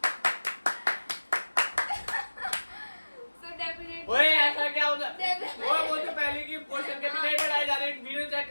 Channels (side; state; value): both; inverted; correlation -1.00